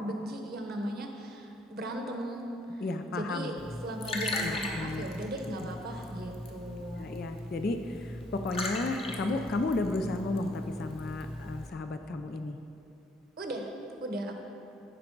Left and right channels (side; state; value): both; normal; correlation 0.65